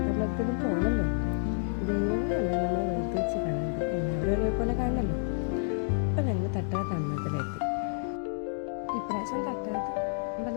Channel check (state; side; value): silent; right; digital silence